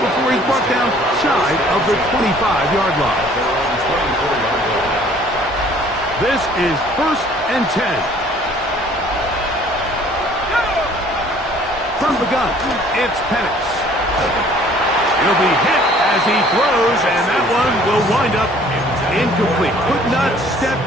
before he's brought down shy of the 25-yard line. This is 1st and 10. From the gun, it's Penix. He'll be hit as he throws, and that one will wind up incomplete. Could not step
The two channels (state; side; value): normal; both; correlation 0.55